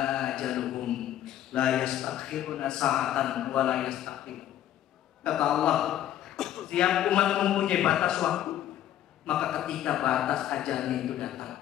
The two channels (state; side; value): quieter; right; 12.0 dB